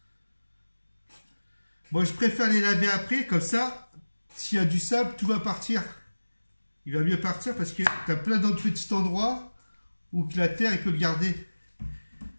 Moi, je préfère les laver après. Comme ça, s'il y a du sable, tout va partir. Il va mieux partir parce que tu as plein d'autres petits endroits où la terre, il peut le garder.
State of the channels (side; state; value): both; inverted; correlation -1.00